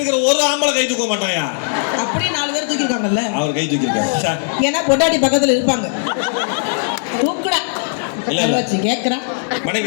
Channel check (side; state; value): right; silent; digital silence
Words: ஒரு ஆம்பளை கை தூக்க மாட்டாயா? அப்படி 4 பேர் தூக்கிருக்காங்கல்ல, அவர் கை தூக்கிருக்காரு. ஏன்னா பொண்டாட்டி பக்கத்துல இருப்பாங்க. தூக்குடா இல்ல வச்சு கேக்குறேன். மனைவி